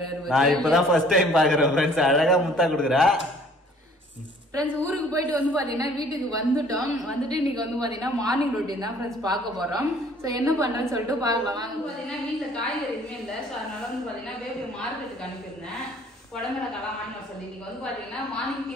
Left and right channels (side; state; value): both; normal; correlation 0.56